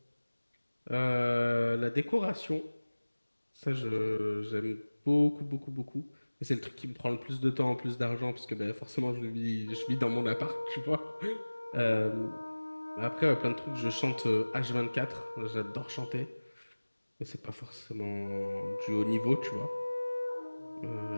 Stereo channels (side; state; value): both; inverted; correlation -1.00